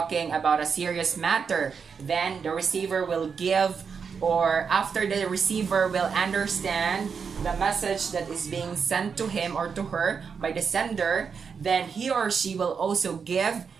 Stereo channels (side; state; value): left; quieter; 6.1 dB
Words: about a serious matter, then the receiver will give, or after the receiver will understand the message that is being sent to him or to her by the sender, then he or she will also give